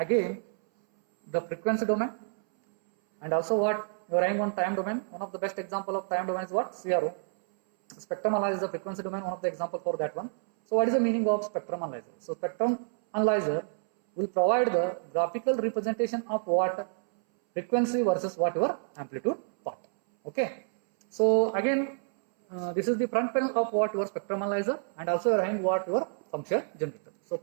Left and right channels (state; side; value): silent; left; 59 dB below the other